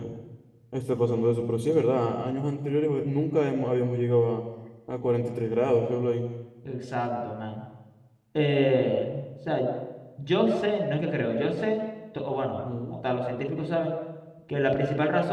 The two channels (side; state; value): both; identical; correlation 1.00